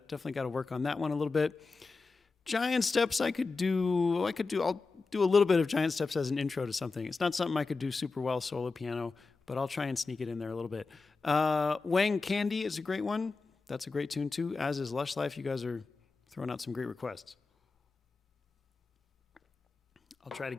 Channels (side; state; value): right; quieter; 4.1 dB